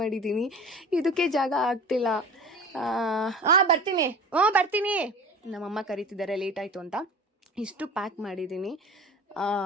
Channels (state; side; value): normal; both; correlation 0.37